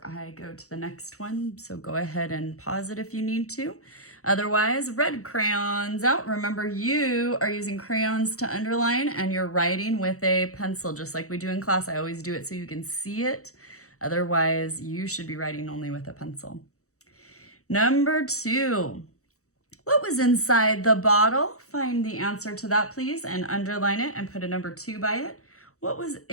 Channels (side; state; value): right; late; 0.65 ms